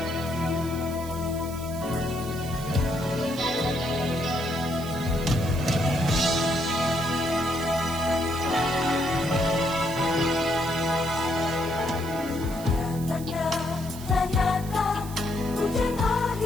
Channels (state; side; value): noise; right; hiss, 15 dB below the sound